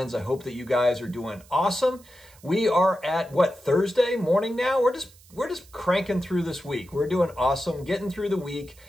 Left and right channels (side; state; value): right; noise; hiss, 26 dB below the sound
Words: I hope that you guys are doing awesome. We are at Thursday morning now. We're just cranking through this week. We're doing awesome, getting through the week.